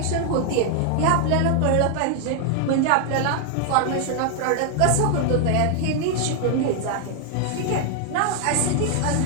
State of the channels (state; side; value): different; both; correlation 0.00